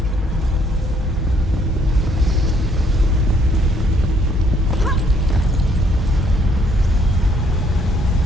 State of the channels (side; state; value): both; normal; correlation 0.67